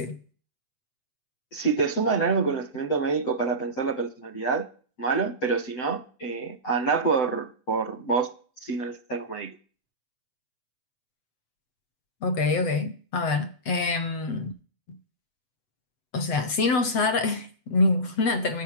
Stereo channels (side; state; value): right; late; 7.9 ms